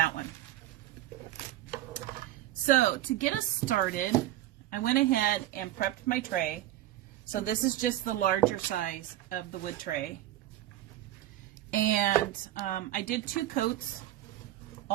one. So to get us started, I went ahead and prepped my tray. So this is just the larger size of the wood tray. And I did 2 coats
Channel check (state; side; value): quieter; left; 14.3 dB